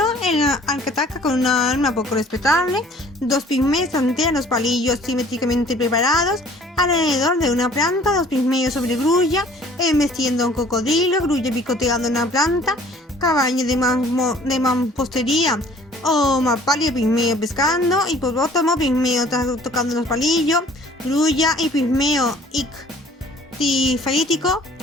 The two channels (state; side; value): normal; both; correlation 0.53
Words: al que ataca con una arma poco respetable. 2 pigmeos tantean los palillos simétricamente preparados alrededor de una planta. 2 pigmeos sobre grulla embestiendo a un cocodrilo. Grulla picoteando una planta. Caballo de mampostería o mapalia pigmeo pescando. Hipopótamo pigmeo tocando los palillos. Grulla y pigmeo ictifalítico